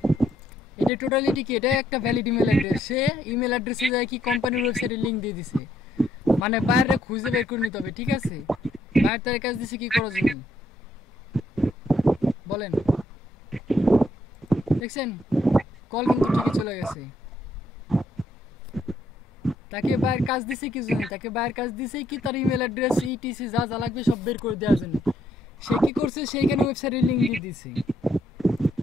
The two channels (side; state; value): both; normal; correlation 0.72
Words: এটা টোটালিটি কি? এটা একটা ভ্যালিড ইমেল অ্যাড্রেস। সে ইমেল অ্যাড্রেসে যায় কি কোম্পানির ওয়েবসাইটে লিংক দিয়ে দিছে, মানে বাইরে খুঁজে বের করে নিতে হবে, ঠিক আছে? বাইরে তার কাজ দিছে কি করার জন্য বলেন? দেখছেন কল কিন্তু ঠিকই চলে গেছে। তাকে বাইরের কাজ দিছে কি জন্য? তাকে বাইরের কাজ দিছে কি তার ইমেল অ্যাড্রেস ইটিসি যা যা লাগবে সব বের করে দেওয়ার জন্য। সে কি করছে? সেইখানে ওয়েবসাইটের লিংক দিয়ে দিছে।